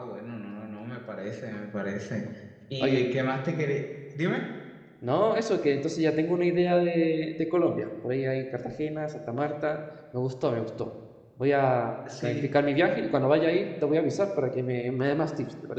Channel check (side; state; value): both; identical; correlation 1.00